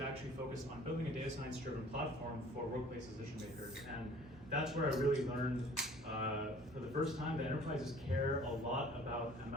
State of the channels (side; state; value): both; normal; correlation 0.51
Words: focused on building a data science-driven platform for workplace decision makers. And that's where I really learned for the first time that enterprises care a lot about